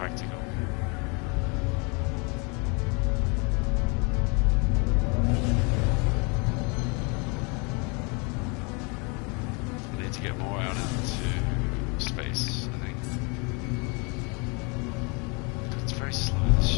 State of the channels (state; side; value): quieter; right; 31.9 dB